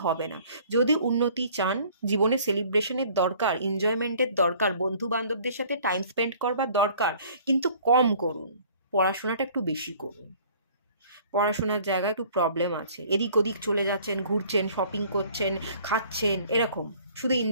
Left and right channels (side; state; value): both; inverted; correlation -0.54